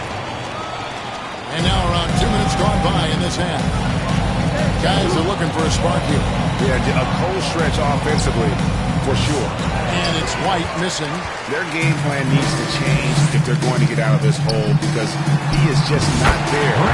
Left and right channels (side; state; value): both; identical; correlation 1.00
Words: And now around 2 minutes gone by in this half. Guys are looking for a spark here. Yeah, a cold stretch offensively, for sure. And it's White missing. Their game plan needs to change if they're going to get out of this hole because he is just not there